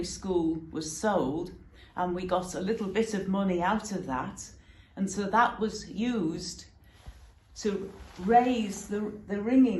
school was sold and we got a little bit of money out of that. And so that was used to raise the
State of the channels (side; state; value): both; identical; correlation 1.00